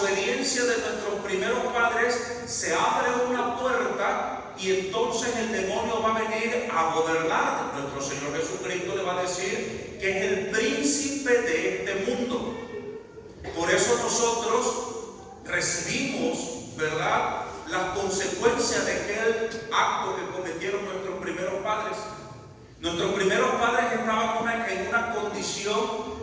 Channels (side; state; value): both; identical; correlation 1.00